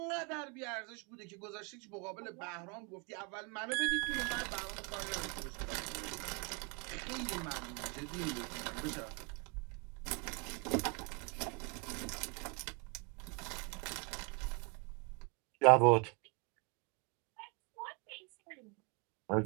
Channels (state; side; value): quieter; left; 33.1 dB